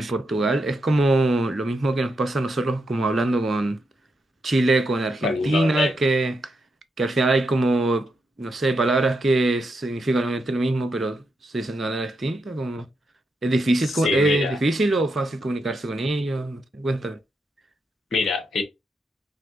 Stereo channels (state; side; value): normal; both; correlation 0.83